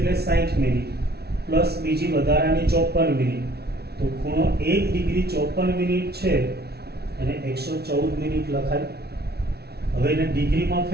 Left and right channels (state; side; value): late; left; 0.47 ms